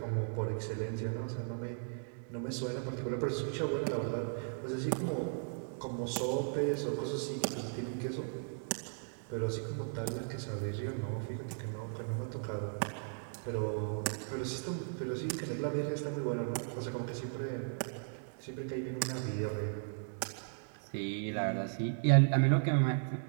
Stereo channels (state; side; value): silent; left; digital silence